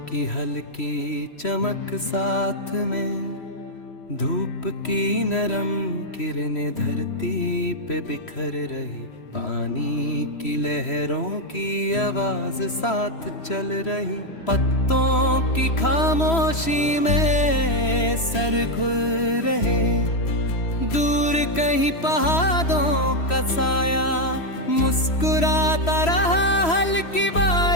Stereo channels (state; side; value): late; right; 3.1 ms